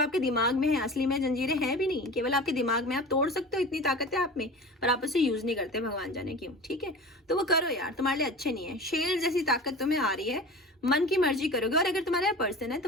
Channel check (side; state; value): both; normal; correlation 0.36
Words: दिमाग में है, असली में जंजीरें हैं भी नहीं, केवल आपके दिमाग में, आप तोड़ सकते हो, इतनी ताकत है आप में, पर आप उसे यूज नहीं करते, भगवान जाने क्यों, ठीक है। तो वो करो यार, तुम्हारे लिए अच्छे नहीं है, शेर जैसी ताकत तुम्हें आ रही है, मन की मर्जी करोगे। और अगर तुम्हारा पर्सन है